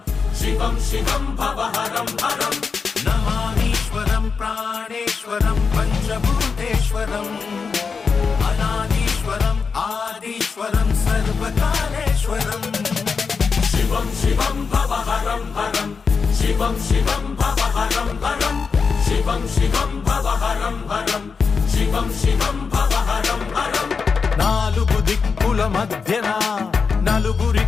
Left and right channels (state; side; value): quieter; right; 5.3 dB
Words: శివం శివం భవహరం హరం. నమామీశ్వరం ప్రాణేశ్వరం పంచభూతేశ్వరం అనాదీశ్వరం ఆదీశ్వరం సర్వకాలేశ్వరం. శివం శివం భవహరం హరం శివం శివం భవహరం హరం శివం శివం భవహరం హరం శివం శివం భవహరం హరం. నాలుగు దిక్కుల మధ్యన నలుగురి